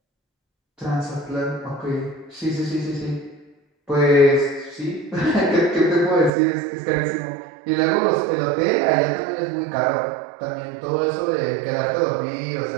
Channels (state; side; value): drops out; left; at 6.3 s